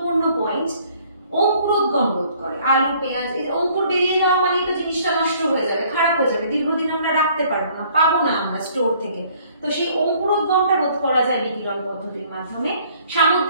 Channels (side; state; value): both; inverted; correlation -0.59